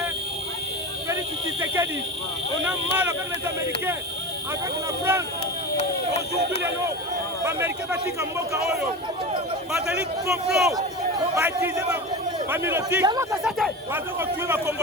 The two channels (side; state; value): both; normal; correlation 0.27